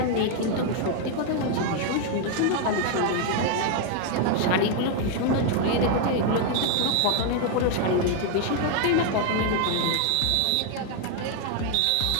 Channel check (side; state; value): both; different; correlation 0.00